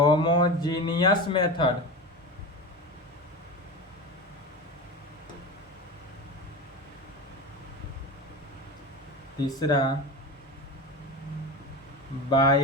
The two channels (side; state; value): both; normal; correlation 0.26